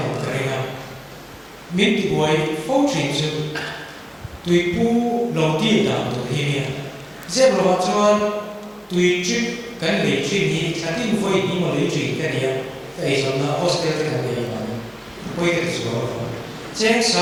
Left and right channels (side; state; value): both; identical; correlation 1.00